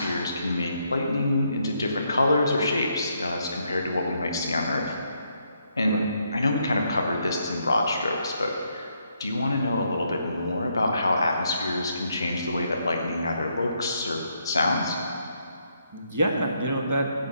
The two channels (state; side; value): inverted; both; correlation -0.75